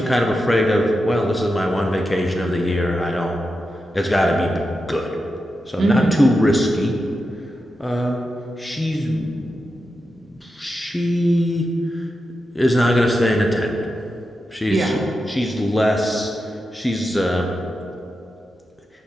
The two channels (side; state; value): both; normal; correlation 0.89